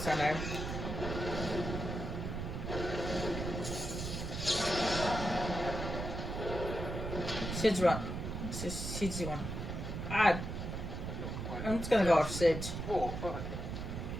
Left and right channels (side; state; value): right; noise; rumble, 5 dB below the sound